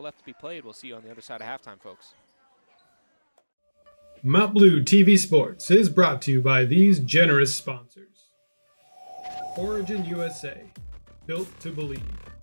left to be played. We'll see you on the other side of halftime, folks. Mount Blue TV Sports is brought to you by these generous sponsors. Origin USA, built to believe.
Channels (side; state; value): both; inverted; correlation -1.00